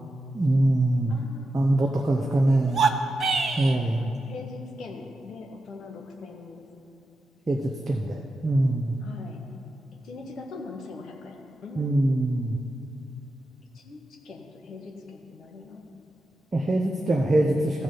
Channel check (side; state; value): both; normal; correlation 0.89